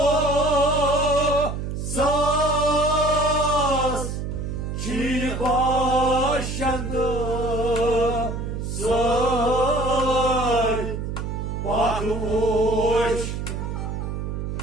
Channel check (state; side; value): noise; right; hum, 4 dB below the sound